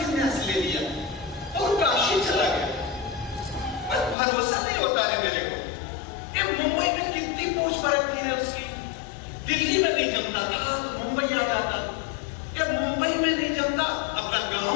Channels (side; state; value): right; drops out; at 4.2 s